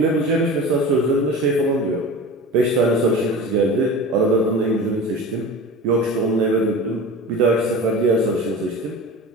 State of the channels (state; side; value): normal; both; correlation 0.33